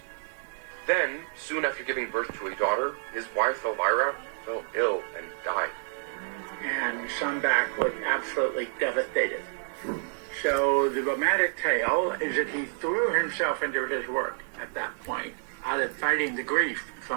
Then, soon after giving birth to a daughter, his wife Elvira fell ill and died. And Sundback was absolutely devastated. So the romantic tale is that he threw himself into his work at that point, out of fighting the grief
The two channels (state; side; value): silent; left; digital silence